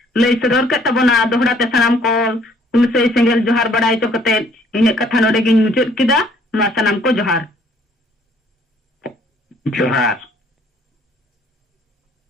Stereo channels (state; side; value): normal; both; correlation 0.61